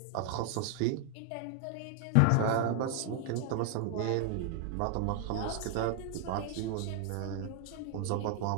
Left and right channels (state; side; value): different; both; correlation 0.00